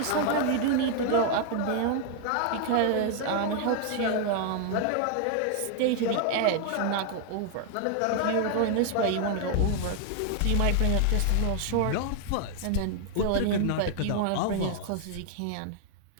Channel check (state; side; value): different; both; correlation 0.00